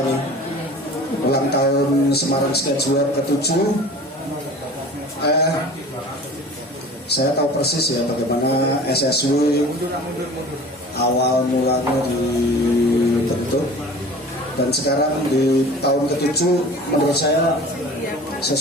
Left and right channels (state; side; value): normal; both; correlation 0.41